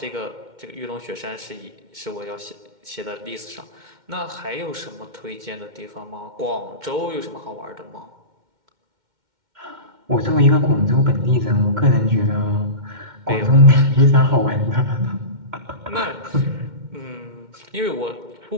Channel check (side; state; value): left; late; 2.1 ms